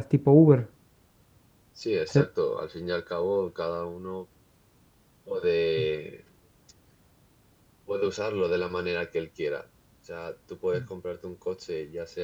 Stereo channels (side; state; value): both; identical; correlation 1.00